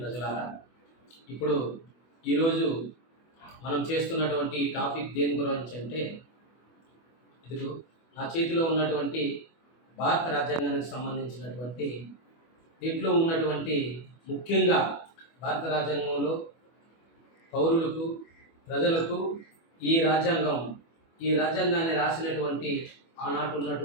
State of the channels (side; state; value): right; late; 24 ms